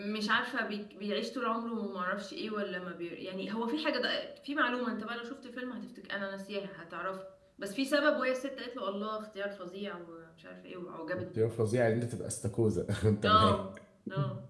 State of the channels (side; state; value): both; identical; correlation 1.00